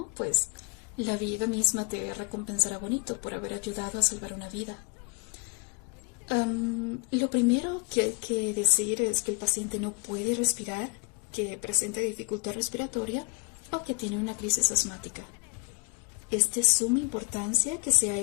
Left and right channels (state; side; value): quieter; right; 29.3 dB